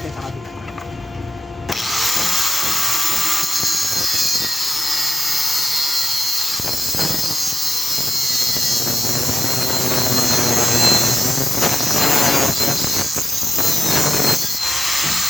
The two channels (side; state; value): both; normal; correlation 0.90